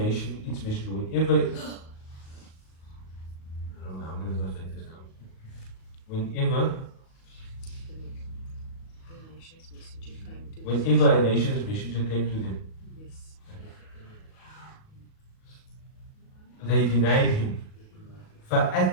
its messenger. Whenever, I don't know, I'm going to translate this now. Whenever a nation's messenger came to them, they denied him.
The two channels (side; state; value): right; late; 37 ms